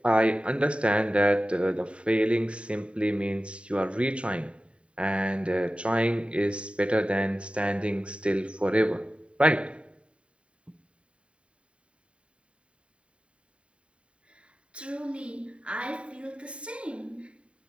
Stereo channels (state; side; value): late; left; 0.059 ms